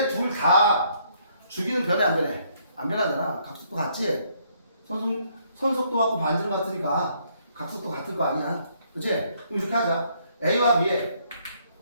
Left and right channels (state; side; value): inverted; both; correlation -0.68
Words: 둘 다 주기는 변해 안 변해? 안 변하잖아. 각속도 같지? 선속도하고 반지름 같으니까 각속도 같을 거 아니야. 그치? 그럼 이렇게 하자. A와 B의